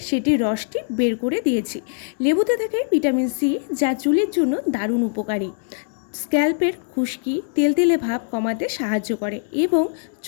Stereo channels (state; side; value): silent; right; 64 dB below the other